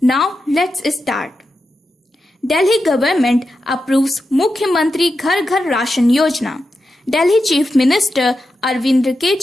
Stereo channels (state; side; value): normal; both; correlation 0.89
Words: Now let's start. Delhi government approves Mukhyamantri Ghar Ghar Ration Yojana. Delhi Chief Minister Arvind